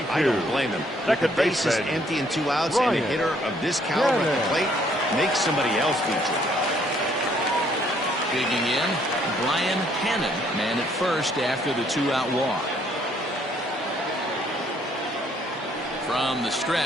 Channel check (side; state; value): both; normal; correlation 0.65